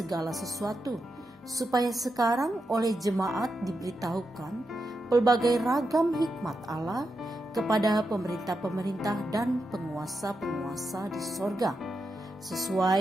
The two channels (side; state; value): both; normal; correlation 0.87